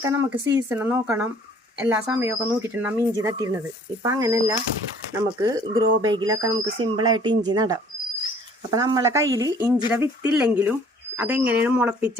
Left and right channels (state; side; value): normal; both; correlation 0.55